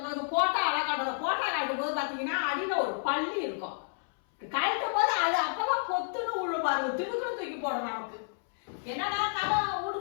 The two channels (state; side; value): silent; right; 58 dB below the other